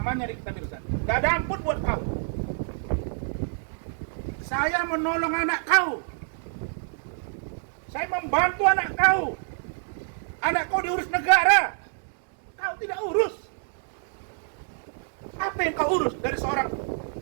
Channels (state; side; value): silent; left; digital silence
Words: Nikita Mirzani. Gak ada ampun buat kau. Saya menolong anak kau. Saya membantu anak kau. Anak kau diurus negara. Kau tidak urus. Apa yang kau urus dari seorang